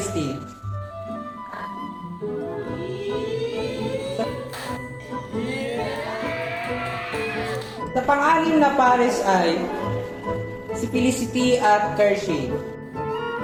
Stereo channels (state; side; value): identical; both; correlation 1.00